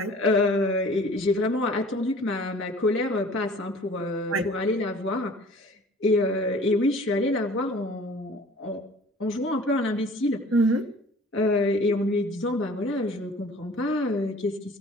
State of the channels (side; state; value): both; normal; correlation 0.48